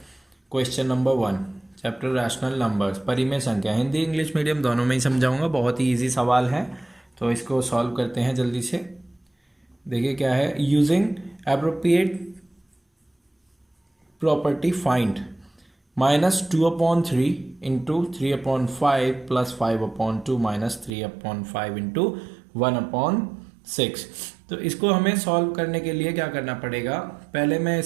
question number 1 chapter rational numbers परिमेय संख्या। हिंदी इंग्लिश मीडियम दोनों में ही समझाऊंगा। बहुत ही इजी सवाल है, तो इसको सॉल्व करते हैं जल्दी से। देखिए क्या है, using appropriate property find -2/3 into 3/5 plus 5/2 -3/5 into 1/6। तो इसको हमें सॉल्व करने के लिए क्या करना पड़ेगा, पहले मैं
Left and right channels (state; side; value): drops out; left; at 20.9 s